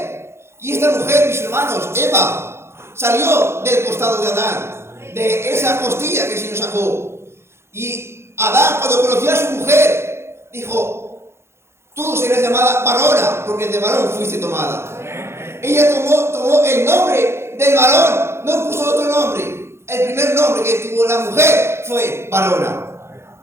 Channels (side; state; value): left; late; 0.12 ms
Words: y esta mujer, mis hermanos, Eva, salió del costado de Adán, de esa costilla que el Señor sacó. Y Adán, cuando conoció a su mujer, dijo, tú serás llamada varona, porque de varón fuiste tomada. Ella tomó el nombre del varón, no puso otro nombre. El primer nombre que tuvo la mujer fue varona.